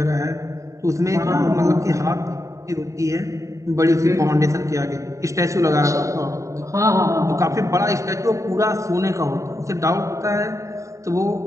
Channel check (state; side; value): late; left; 0.15 ms